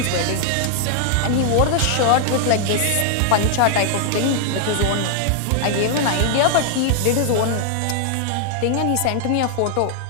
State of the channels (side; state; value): both; different; correlation -0.01